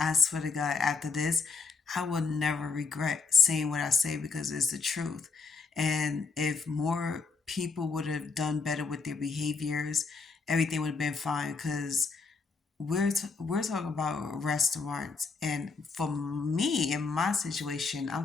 swear to God, after this, I will never regret saying what I say because it's the truth. And if more people would have done better with their behaviors, everything would have been fine. Because we're talking about restaurants, and for me, in my situation,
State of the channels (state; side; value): quieter; right; 4.6 dB